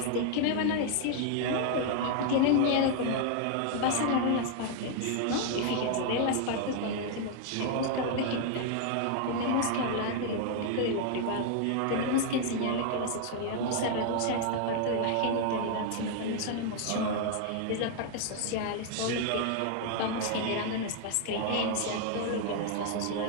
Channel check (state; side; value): different; both; correlation 0.00